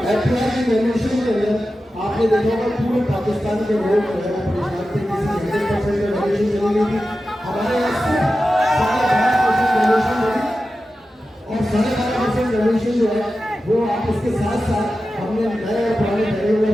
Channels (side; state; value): both; normal; correlation 0.93